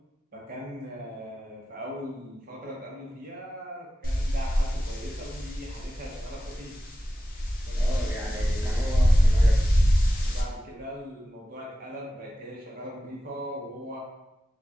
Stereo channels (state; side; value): normal; both; correlation 0.94